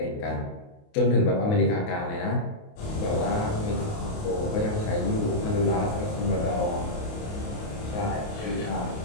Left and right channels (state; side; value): late; right; 28 ms